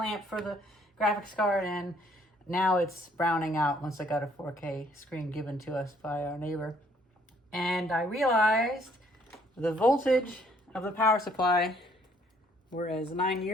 for the graphics card, and now it's browning out once I got a 4K screen given to us by our neighbor. And I realized the voltage of the power supply, whereas 9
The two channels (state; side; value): normal; both; correlation 0.64